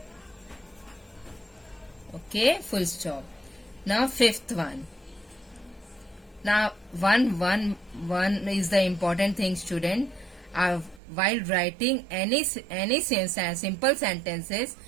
Okay, full stop. Now fifth one. Now one is the important thing, student. While writing any simple sentences,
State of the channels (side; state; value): left; drops out; at 11.0 s